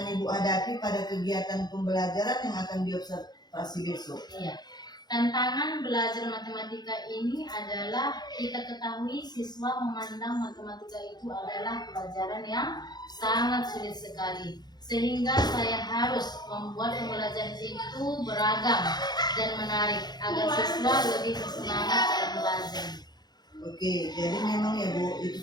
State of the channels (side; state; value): right; late; 0.20 ms